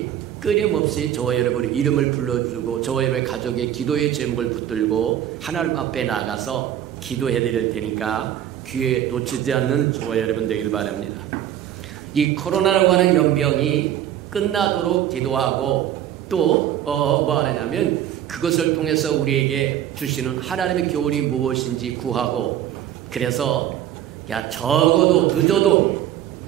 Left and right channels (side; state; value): left; quieter; 11.2 dB